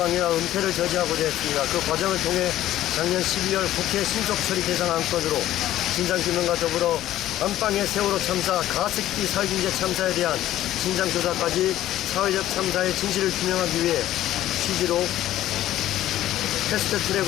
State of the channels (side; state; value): right; quieter; 13.6 dB